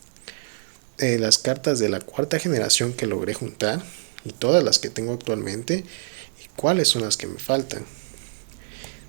las cartas de la cuarta generación que logré juntar y todas las que tengo actualmente y cuáles son las que me faltan.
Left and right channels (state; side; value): silent; left; 62 dB below the other